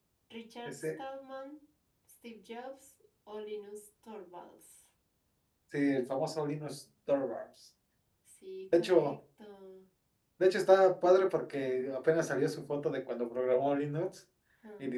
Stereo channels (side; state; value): both; identical; correlation 1.00